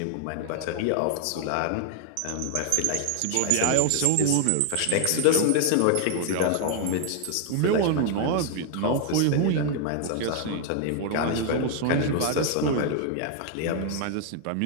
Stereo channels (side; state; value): both; different; correlation 0.00